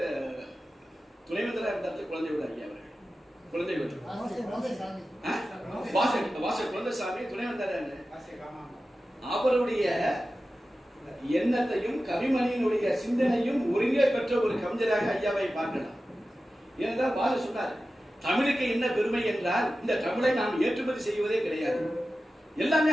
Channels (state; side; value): normal; both; correlation 0.94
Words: துணைவேந்தராக இருந்தார்கள் குழந்தைவேல் ஐயா அவர்கள். குழந்தைவேல் குழந்தைசாமி துணைவேந்தர். அவருடைய எண்ணத்தையும் கவிமணியினுடைய சிந்தனையும் ஒருங்கே பெற்ற ஒரு கவிஞராக ஐயாவை பார்க்கலாம். ஏனென்றால் பாரதி சொன்னார், தமிழுக்கு என்ன பெருமை என்றால் இந்த தமிழை நாம் ஏற்றுமதி செய்வதே கிடையாது, எல்லாமே